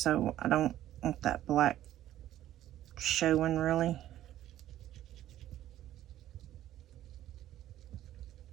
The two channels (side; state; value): left; quieter; 12.9 dB